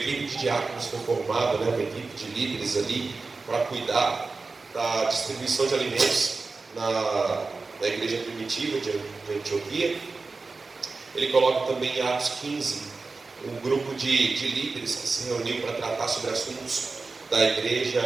de diáconos foi formada, né, uma equipe de líderes ali para cuidar da distribuição de alimentos na igreja primitiva de Antioquia. Ele coloca também em Atos 15 um grupo de líderes que se reuniu para tratar sobre assuntos da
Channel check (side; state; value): left; quieter; 4.0 dB